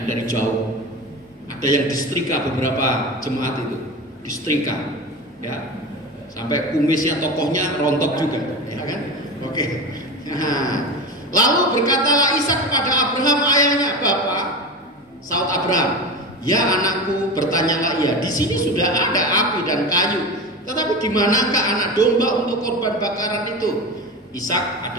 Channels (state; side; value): normal; both; correlation 0.26